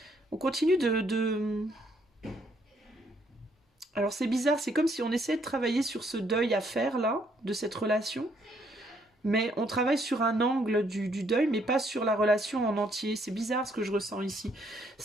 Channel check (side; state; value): both; normal; correlation 0.69